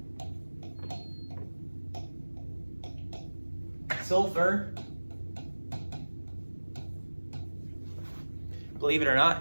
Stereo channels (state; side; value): inverted; both; correlation -1.00